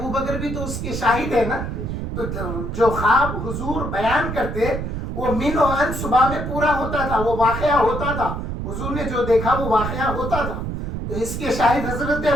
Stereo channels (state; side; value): noise; right; rumble, 4 dB below the sound